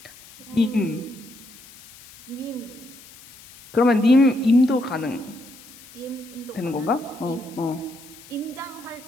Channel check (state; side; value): noise; left; hiss, 21 dB below the sound